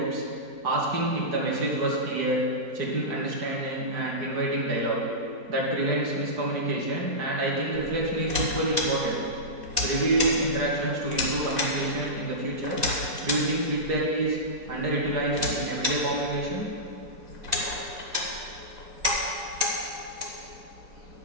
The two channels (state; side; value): late; left; 4.1 ms